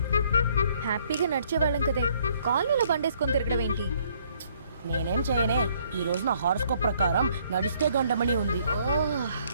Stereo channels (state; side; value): inverted; both; correlation -0.65